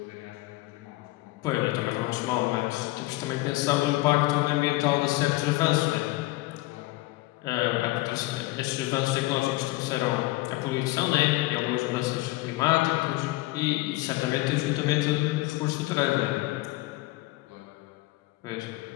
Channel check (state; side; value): quieter; right; 19.5 dB